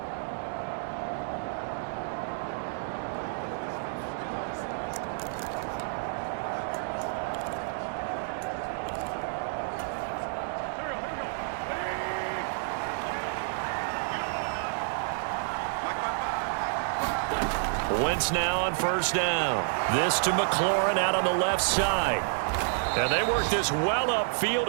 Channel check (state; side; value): silent; left; digital silence